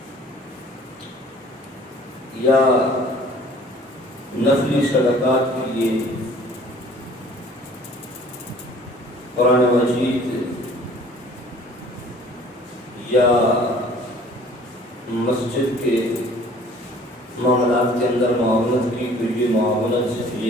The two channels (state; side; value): normal; both; correlation 0.52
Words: یا نفلی صدقات کے لیے قرآن مجید یا مسجد کے معاملات کے اندر معاونت کی، تو یہ معاونت